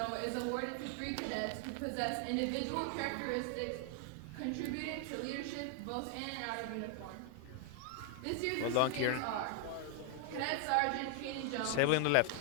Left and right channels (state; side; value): different; both; correlation 0.00